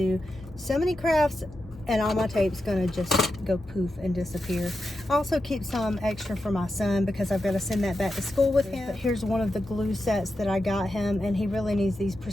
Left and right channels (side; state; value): both; normal; correlation 0.89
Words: so many crafts and all my tape's going to just go poof and disappear. I also keep some extra for my son because I've got to send that back to school with him. But here's one of the glue sets that I got him, and he really needs these